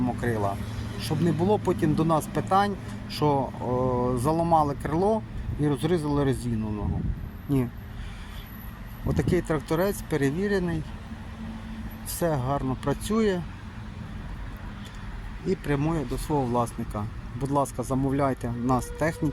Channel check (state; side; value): identical; both; correlation 1.00